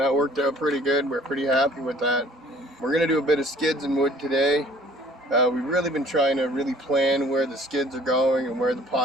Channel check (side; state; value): both; normal; correlation 0.54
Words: worked out pretty good. We're pretty happy with that. We're going to do a bit of skids and wood today. We've really been trying to really plan where the skids are going and where the